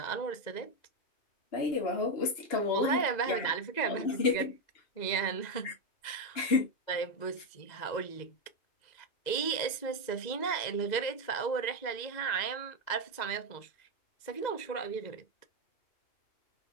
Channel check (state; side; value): late; right; 2.0 ms